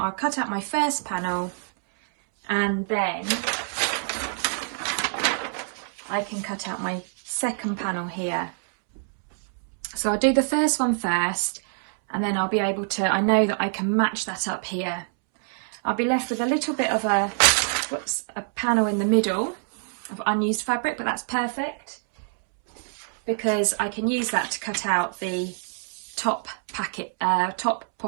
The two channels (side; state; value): left; silent; 61 dB below the other